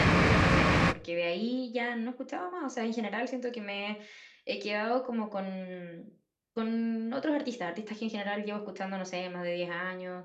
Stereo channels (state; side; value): identical; both; correlation 1.00